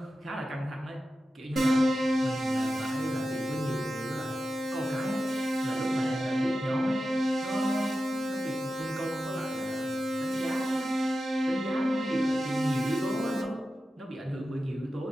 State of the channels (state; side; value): normal; both; correlation 0.92